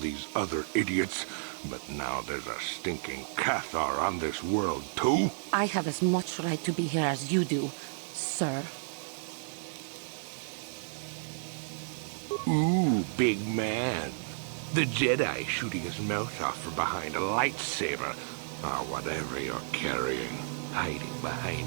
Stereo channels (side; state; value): left; silent; 56 dB below the other